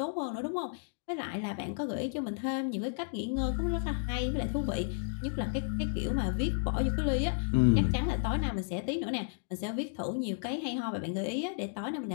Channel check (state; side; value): silent; right; digital silence